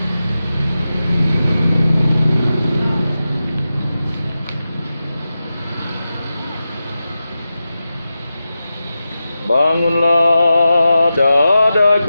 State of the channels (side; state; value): both; inverted; correlation -0.92